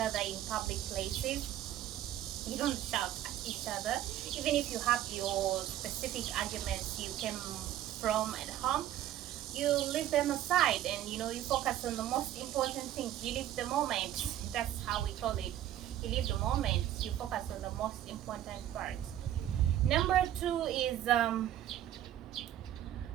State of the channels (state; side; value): quieter; left; 12.2 dB